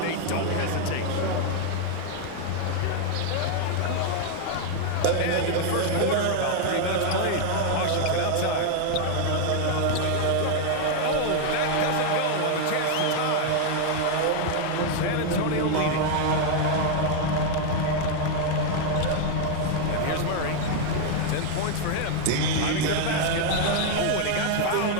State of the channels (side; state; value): both; different; correlation 0.00